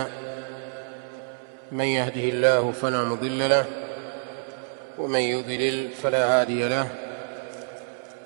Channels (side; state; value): left; silent; 60 dB below the other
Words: من يهده الله فلا مضل له ومن يضلل فلا هادي له.